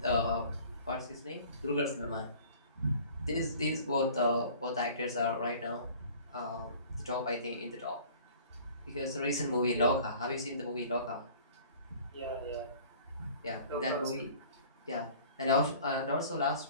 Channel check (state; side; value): inverted; both; correlation -0.48